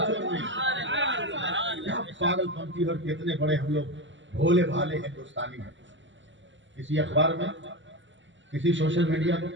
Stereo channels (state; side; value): late; left; 0.54 ms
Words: کیا پاگل پنتی اور کتنے بڑے ہم لوگ بھولے بھالے ہندوستانی ہیں. کسی اخبار میں, کسی سوشل میڈیا میں,